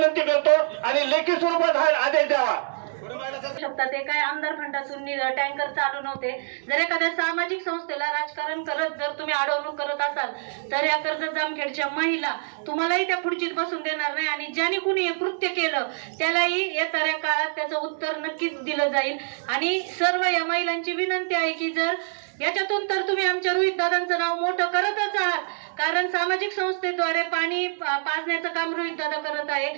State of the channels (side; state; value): left; silent; digital silence